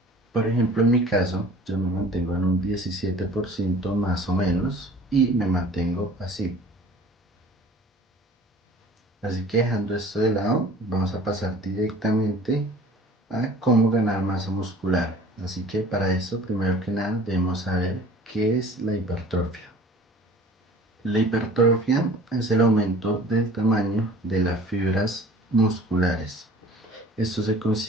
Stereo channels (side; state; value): both; normal; correlation 0.47